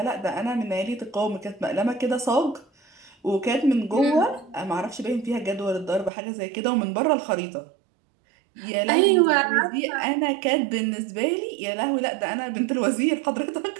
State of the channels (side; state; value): left; drops out; at 6.1 s